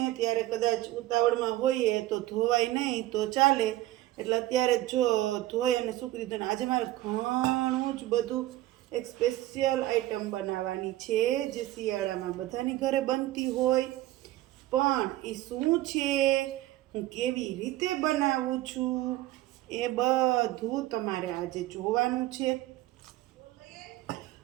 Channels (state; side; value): quieter; left; 16.0 dB